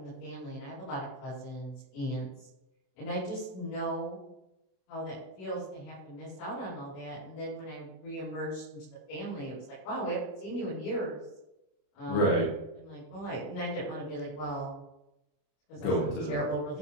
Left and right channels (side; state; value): right; late; 32 ms